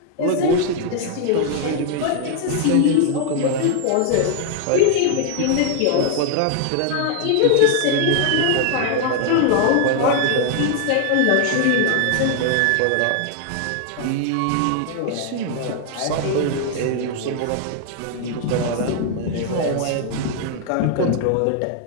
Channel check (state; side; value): different; both; correlation 0.00